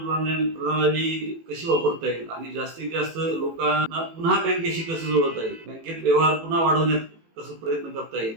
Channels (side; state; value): left; late; 18 ms